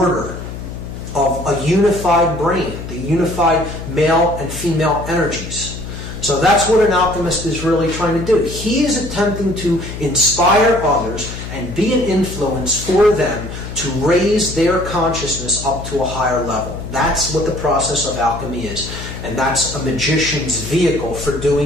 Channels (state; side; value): noise; left; hum, 9 dB below the sound